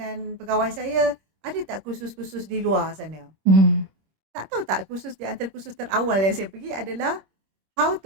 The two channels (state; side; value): late; left; 26 ms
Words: pegawai saya, ada tak kursus-kursus di luar sana? Tak tahu tak, kursus di antara kursus terawal yang saya pergi adalah how